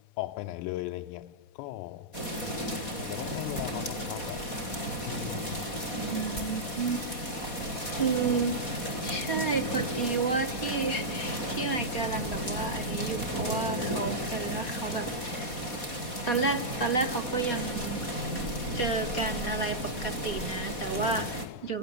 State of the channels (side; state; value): right; late; 4.1 ms